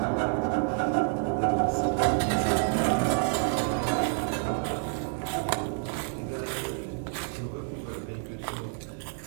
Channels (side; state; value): left; silent; 59 dB below the other